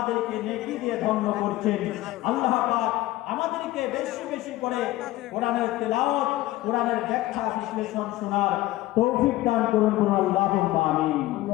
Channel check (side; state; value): right; quieter; 16.7 dB